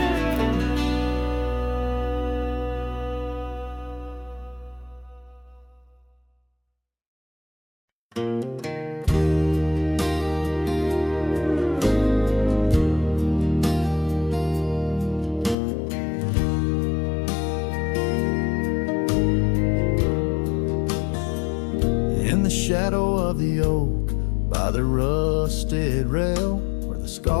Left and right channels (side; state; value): right; drops out; at 15.6 s